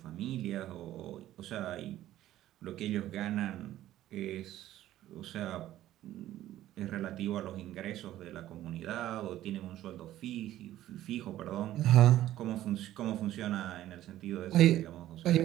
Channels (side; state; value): left; quieter; 13.6 dB